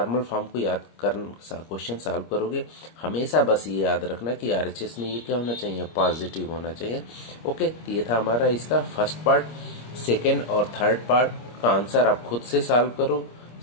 फॉर्म को याद कर क्वेश्चन सॉल्व करोगे, हमेशा बस ये याद रखना कि आरएचएस में ये क्या होना चाहिए, पॉजिटिव होना चाहिए। ओके, तो ये था हमारा इसका फर्स्ट पार्ट। सेकेंड और थर्ड पार्ट का आंसर आप खुद से सॉल्व करो,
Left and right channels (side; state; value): right; late; 25 ms